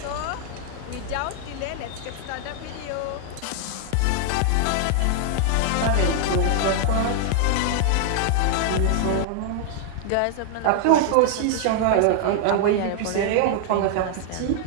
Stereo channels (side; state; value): both; different; correlation 0.00